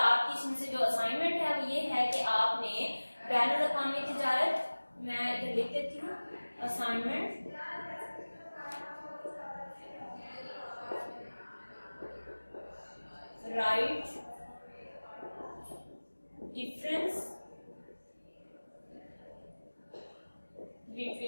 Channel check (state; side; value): inverted; both; correlation -1.00